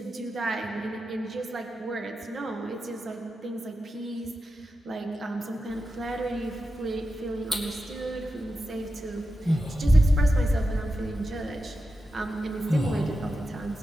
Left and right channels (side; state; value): both; normal; correlation 0.90